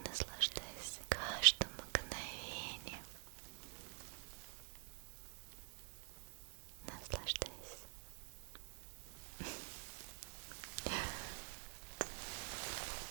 наслаждайся каждым мгновением. Наслаждайся.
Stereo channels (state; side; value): quieter; left; 34.5 dB